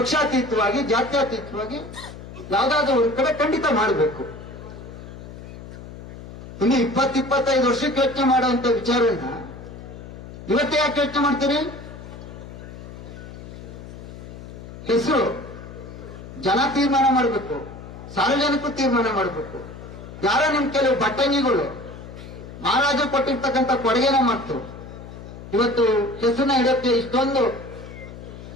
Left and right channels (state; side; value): noise; left; hum, 13 dB below the sound